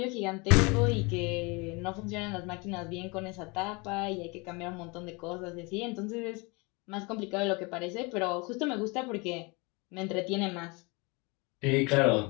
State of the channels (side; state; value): right; quieter; 28.1 dB